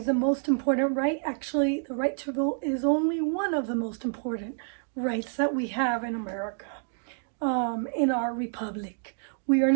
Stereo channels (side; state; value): left; silent; 59 dB below the other